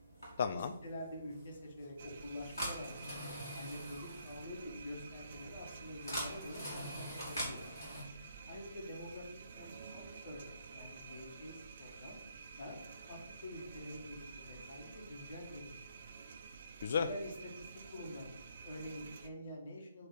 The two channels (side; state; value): both; inverted; correlation -0.71